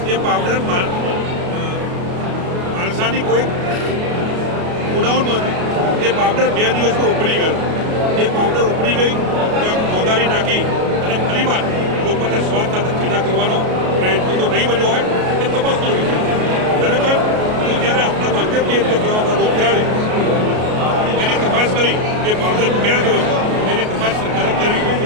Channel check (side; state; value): left; late; 33 ms